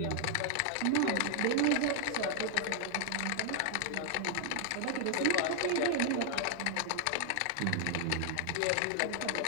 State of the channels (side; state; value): both; different; correlation 0.00